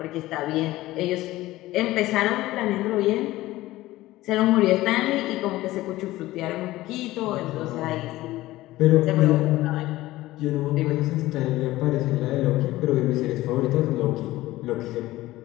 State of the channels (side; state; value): right; quieter; 17.1 dB